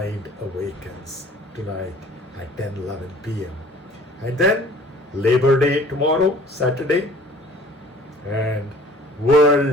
awakens tonight at 10:11 p.m. And then Labor Day tomorrow, Saturday, and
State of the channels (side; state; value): both; normal; correlation 0.51